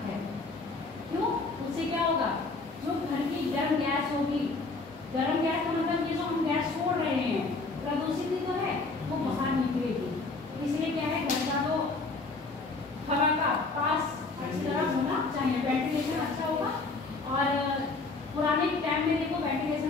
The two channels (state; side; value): quieter; right; 3.7 dB